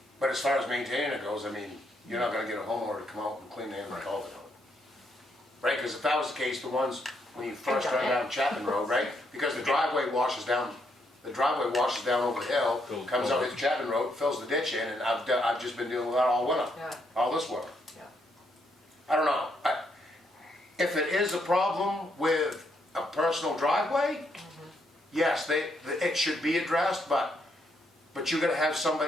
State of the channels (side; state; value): both; normal; correlation 0.76